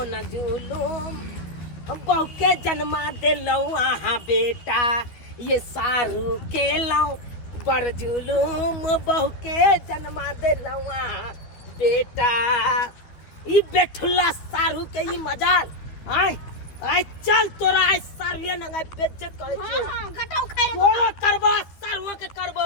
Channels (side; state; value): right; late; 12 ms